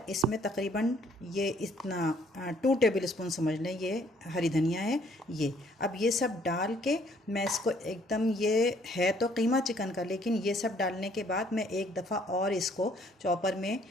इसमें तकरीबन ये इतना 2 टेबल स्पून समझ लें, ये हरी धनिया है ये। अब ये सब डाल के मैं इसको एकदम, ये है तो कीमा चिकन का, लेकिन ये सब डालने के बाद मैं एक दफ़ा और इसको चॉपर में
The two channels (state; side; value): normal; both; correlation 0.63